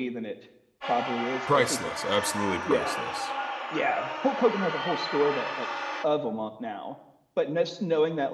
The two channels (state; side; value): identical; both; correlation 1.00